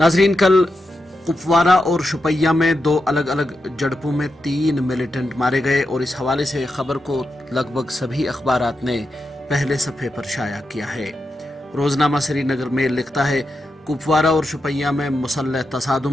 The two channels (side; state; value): both; normal; correlation 0.87